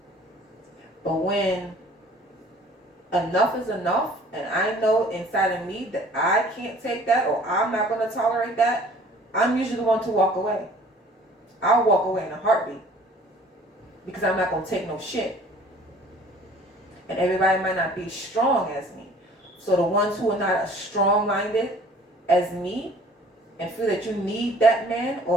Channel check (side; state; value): both; normal; correlation 0.52